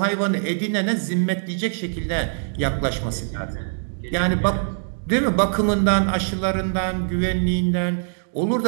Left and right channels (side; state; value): left; silent; digital silence